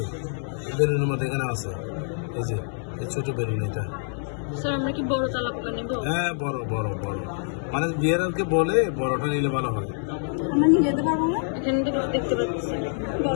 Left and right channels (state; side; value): silent; right; digital silence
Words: বেলুনের মধ্যে এখানে আছে এই যে এই ছোট বেলুন এটা স্যার আমরা কি বড় তালাবটা নেব হ্যাঁ বড় বড় বড় মানে বিয়ারকে বলে বড়টা নিলে ভালো হয় আমরা নিয়ে যেতে পারবো না এখানে দেখতে পাচ্ছি